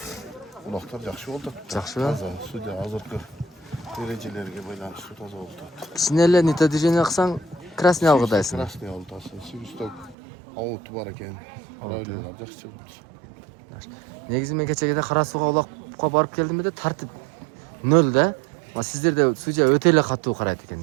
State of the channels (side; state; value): left; drops out; at 10.2 s